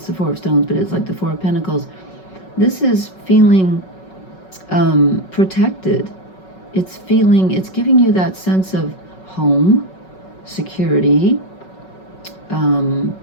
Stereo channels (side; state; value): right; late; 5.4 ms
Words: the 4 of stones, but it's like the 4 of pentacles. This is feeling protected. It's giving you that sense of home, security,